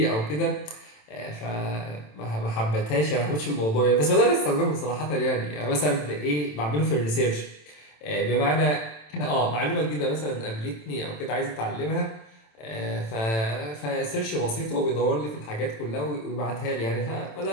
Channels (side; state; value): right; late; 27 ms